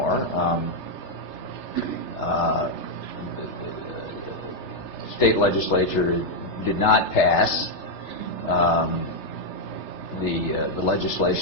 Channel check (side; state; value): right; late; 3.3 ms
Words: The state legislature did not pass the